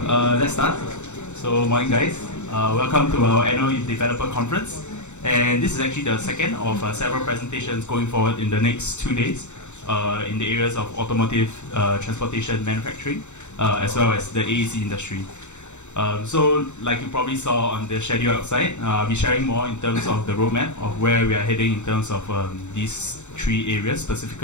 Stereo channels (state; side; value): late; right; 0.83 ms